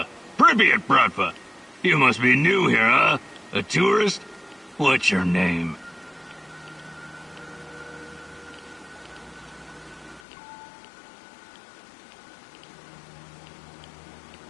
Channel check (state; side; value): drops out; right; at 10.2 s